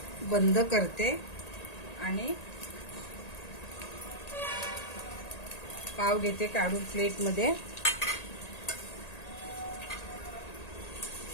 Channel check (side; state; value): right; late; 1.8 ms